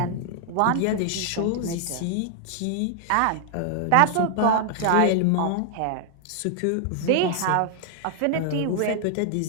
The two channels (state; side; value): different; both; correlation 0.00